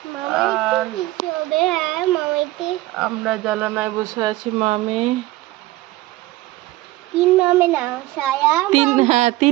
আর আমরা জানালায় বসে আছি মামে। তিন মামে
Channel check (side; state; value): left; quieter; 18.0 dB